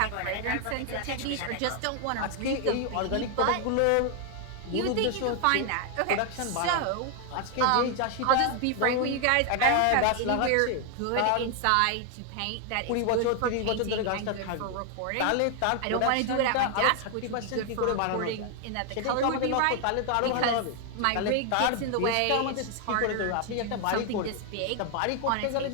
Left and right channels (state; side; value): different; both; correlation 0.00